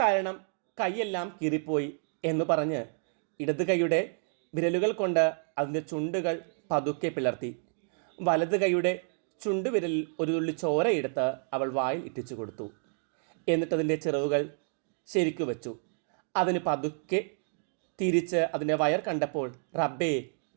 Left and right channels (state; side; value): silent; left; 58 dB below the other